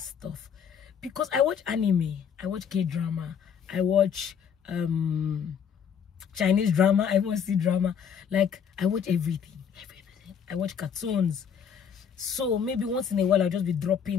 because I watch anime, I watch K-drama, I watch Chinese drama, I want to see drama. Like, I watch everything. I watch cartoons. So maybe once in a while I'll just be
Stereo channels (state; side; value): quieter; right; 7.4 dB